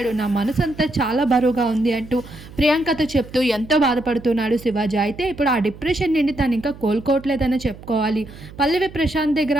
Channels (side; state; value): right; noise; hum, 17 dB below the sound